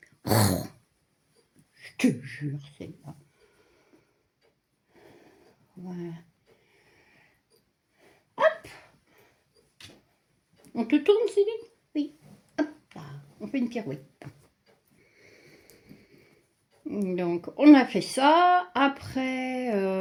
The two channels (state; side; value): identical; both; correlation 1.00